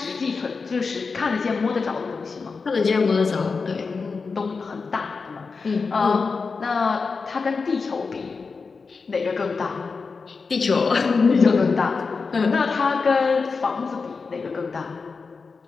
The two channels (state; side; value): quieter; right; 4.7 dB